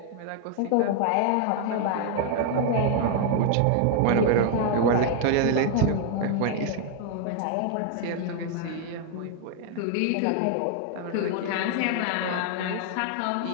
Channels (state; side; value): different; both; correlation 0.00